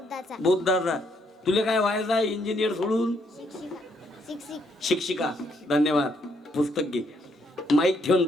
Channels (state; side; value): normal; both; correlation 0.72